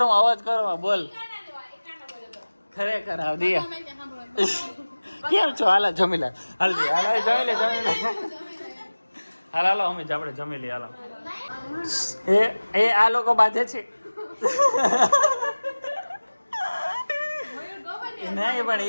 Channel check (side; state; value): both; inverted; correlation -1.00